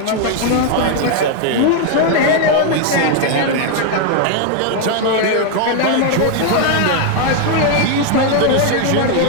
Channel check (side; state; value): both; different; correlation 0.00